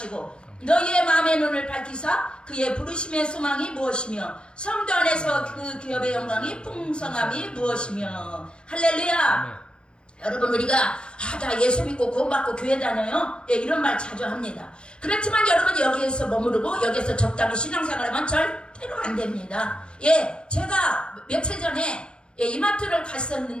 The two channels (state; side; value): late; right; 0.055 ms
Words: 너희의 마음의 눈을 밝히사 그의 부르심의 소망이 무엇이며 성도 안에서 그 기업의 영광이 풍성함이 무엇이며. 할렐루야. 여러분 우리가 나 예수 믿고 구원받고 교회 다녀요 이런 말 자주 합니다. 그렇지만 여러분 여기에서 머무르고 여기에서 적당히 신앙생활하면 절대로 안 됩니다. 제가 며칠 전에 이마트를